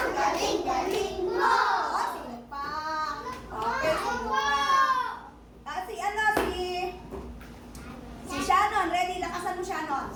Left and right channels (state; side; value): identical; both; correlation 1.00